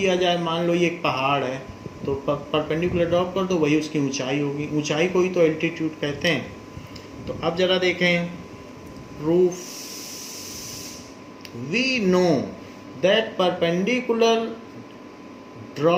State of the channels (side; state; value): both; identical; correlation 1.00